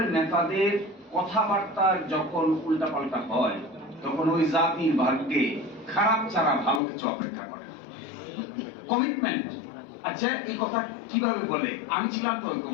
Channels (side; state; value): right; drops out; at 6.8 s